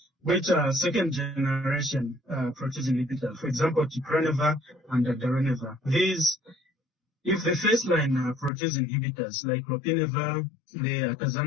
which are second generation protease inhibitors, for example, Glucuronidation and Dolutegravir. These, if the first line protease inhibitors like Lopinavir, the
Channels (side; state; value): right; drops out; at 8.5 s